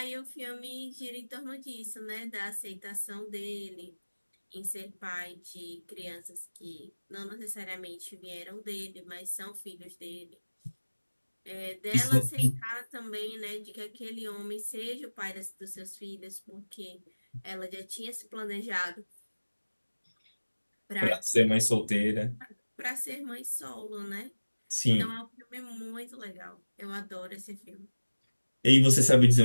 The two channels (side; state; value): both; inverted; correlation -1.00